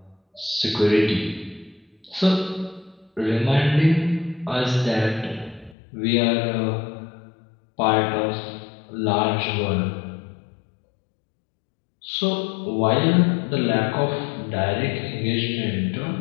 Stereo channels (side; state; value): right; drops out; at 5.8 s